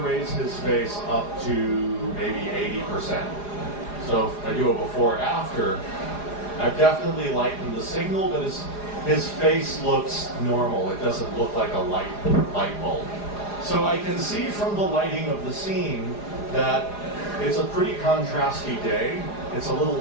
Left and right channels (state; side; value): late; right; 4.9 ms